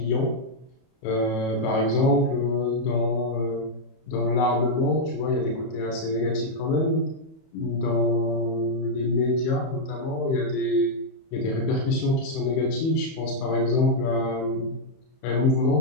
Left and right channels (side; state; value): right; late; 31 ms